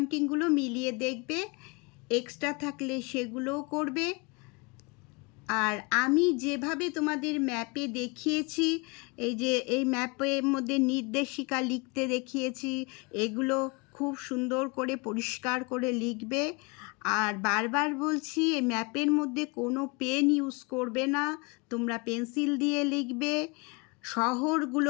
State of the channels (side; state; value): right; quieter; 28.9 dB